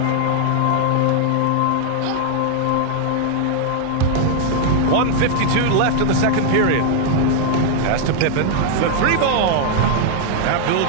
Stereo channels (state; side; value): different; both; correlation 0.00